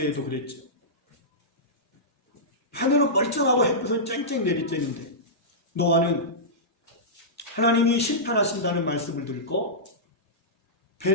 그랬죠. 하늘은 멀쩡하고 햇빛은 쨍쨍 내리쬐는데 노아는 하나님이 심판하신다는 말씀을 듣고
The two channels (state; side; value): normal; both; correlation -0.15